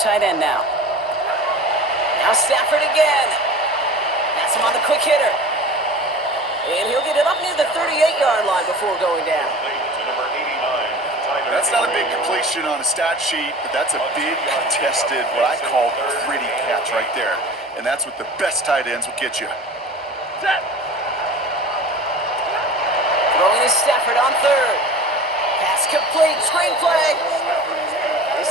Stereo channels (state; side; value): normal; both; correlation 0.38